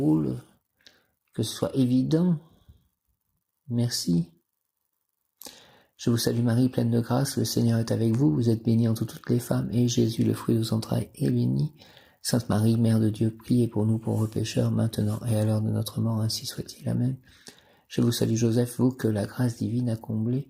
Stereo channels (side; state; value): both; identical; correlation 1.00